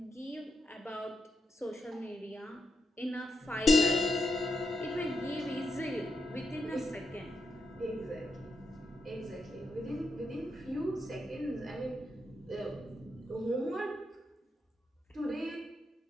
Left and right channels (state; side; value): normal; both; correlation 0.83